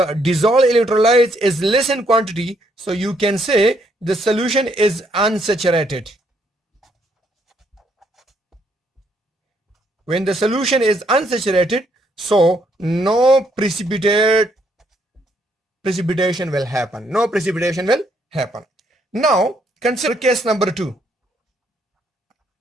dissolved electrolyte is less in quantity, so you can say the solution is unsaturated. When the solution is unsaturated, so no precipitation will happen. No precipitation will happen. Now consider case number 2.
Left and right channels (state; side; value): normal; both; correlation 0.72